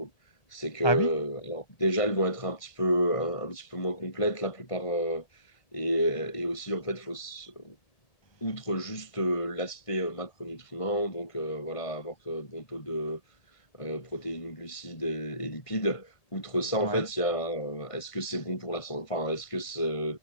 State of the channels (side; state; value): right; late; 1.5 ms